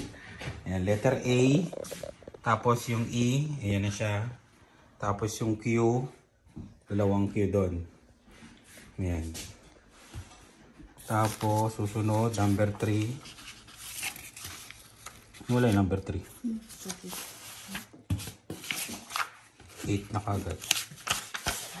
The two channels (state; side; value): identical; both; correlation 1.00